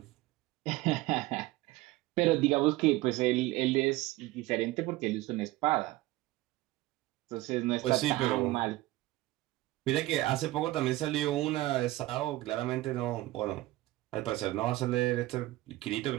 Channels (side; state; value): left; quieter; 18.1 dB